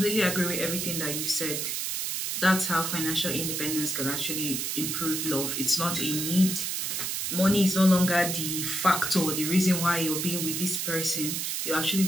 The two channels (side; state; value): right; noise; hiss, 2 dB below the sound